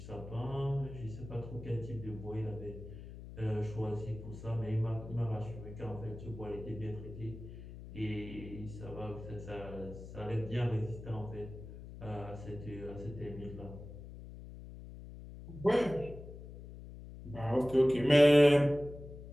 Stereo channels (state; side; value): noise; left; hum, 13 dB below the sound